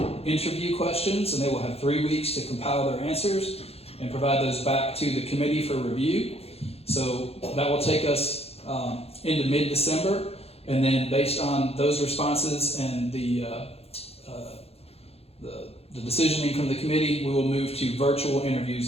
interview questions, and they will have 3 weeks to compile their answers and provide those back to the committee for review. So that will take us into mid-December, and then based on those responses and the decisioning from the committee, we will move to virtual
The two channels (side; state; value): right; late; 0.29 ms